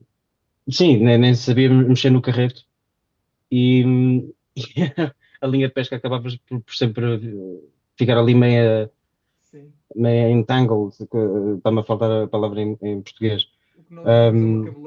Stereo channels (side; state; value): both; identical; correlation 1.00